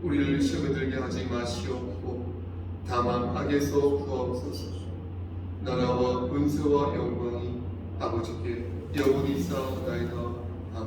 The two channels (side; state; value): both; identical; correlation 1.00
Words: 우리를 시험에 들게 하지 마시옵고 다만 악에서 구하옵소서. 나라와 은혜와 영광이 아버지께 영원히 쌓아나이다.